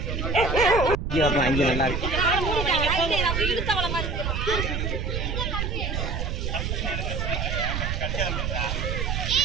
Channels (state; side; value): noise; right; rumble, 2 dB below the sound